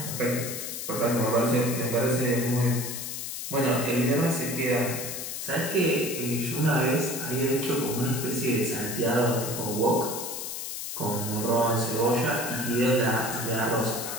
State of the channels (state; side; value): noise; left; hiss, 6 dB below the sound